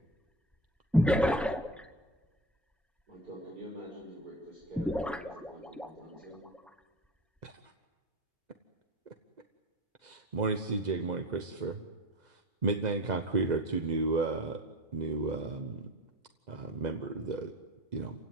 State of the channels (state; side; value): normal; both; correlation 0.30